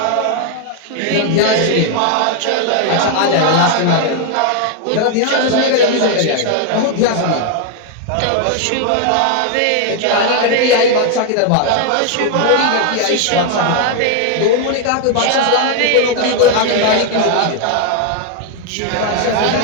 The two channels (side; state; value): both; different; correlation 0.00